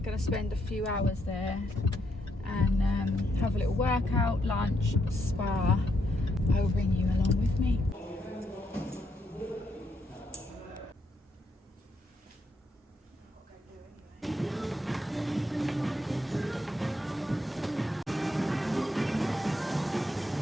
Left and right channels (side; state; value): both; normal; correlation 0.77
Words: going to spend a few hours there and have a little workout, lunch, spa. I will bring you along with me.